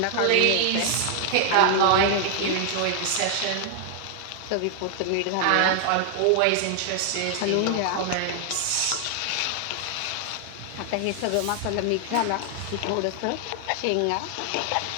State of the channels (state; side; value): different; both; correlation 0.00